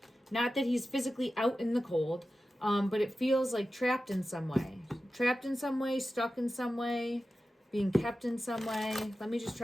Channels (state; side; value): normal; both; correlation 0.93